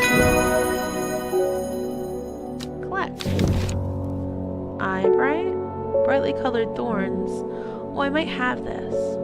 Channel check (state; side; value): identical; both; correlation 1.00